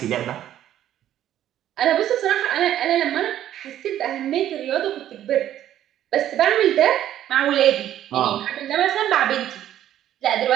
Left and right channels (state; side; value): quieter; left; 11.8 dB